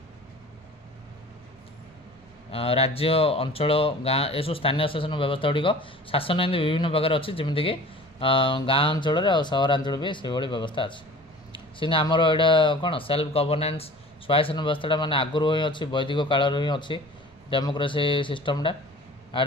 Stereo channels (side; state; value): right; noise; rumble, 29 dB below the sound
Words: राज्य अंचल गाँ ये सब स्थानीय शासन व्यवस्था गुड़िक शासन एमती विभिन्न प्रकार अच्छी जमीक गाँ अंचल और सहरांचल भी से व्यवस्था अच्छी से आमर यहाँ कौन सेल्फ गवर्नेंस स्वायत्त व्यवस्था माने आगुरी ही अच्छी वैदिक काल ही अच्छी डेमोक्रेसी सिस्टमटा